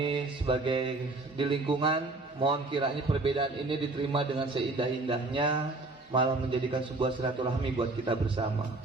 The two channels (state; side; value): quieter; left; 3.2 dB